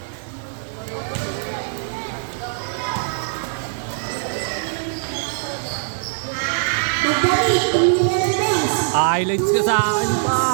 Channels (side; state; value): left; silent; digital silence